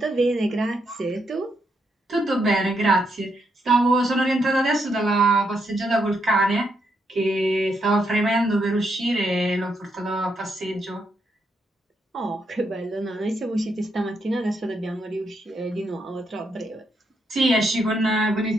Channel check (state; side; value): normal; both; correlation 0.79